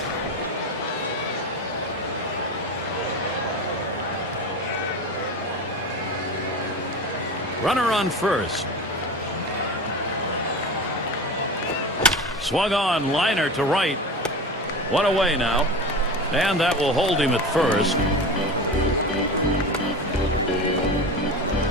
Runner on first. Swung on, liner to right. One away now. And that will hold him at first.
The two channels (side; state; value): both; normal; correlation 0.29